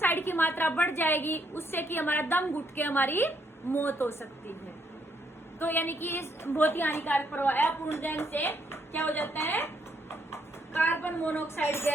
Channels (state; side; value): normal; both; correlation 0.73